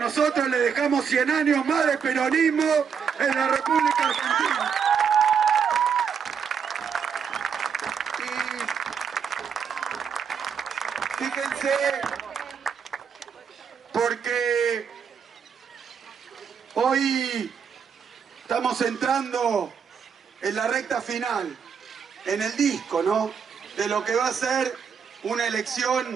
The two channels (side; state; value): left; quieter; 6.9 dB